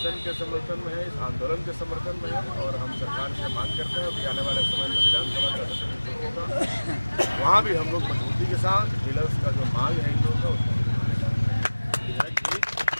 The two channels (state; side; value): inverted; both; correlation -1.00